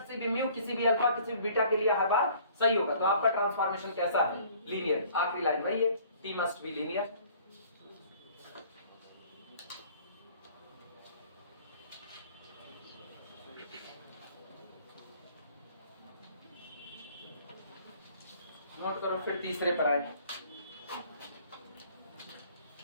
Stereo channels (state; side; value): inverted; both; correlation -0.55